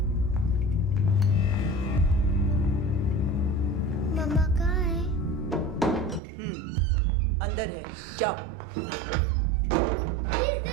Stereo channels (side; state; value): left; drops out; at 6.2 s